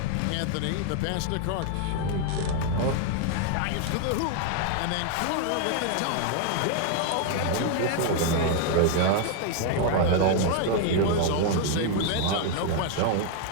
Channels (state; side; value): different; both; correlation 0.00